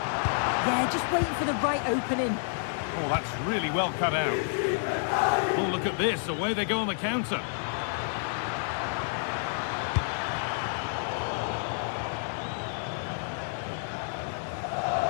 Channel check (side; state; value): right; silent; digital silence